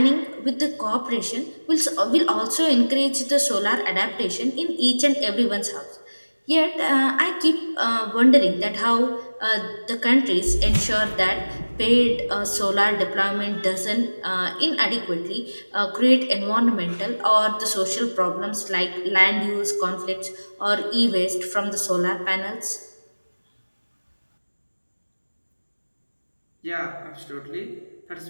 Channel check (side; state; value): both; inverted; correlation -1.00